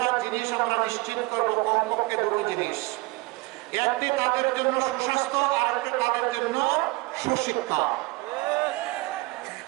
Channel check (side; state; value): left; quieter; 23.2 dB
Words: জিনিস আমরা নিশ্চিত করবো, কমপক্ষে 2টো জিনিস। একটি তাদের জন্য সুস্বাস্থ্য, আর একটি তাদের জন্য সুশিক্ষা।